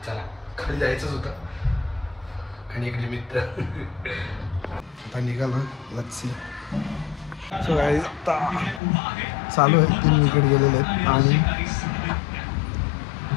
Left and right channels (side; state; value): right; drops out; at 8.8 s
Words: चला खाली जायचंच होतं आणि एक निमित्त आता निघालो. Let's see. सो गाईस आता चालू आहे. 3 विकेट गेलेले आहेत आणि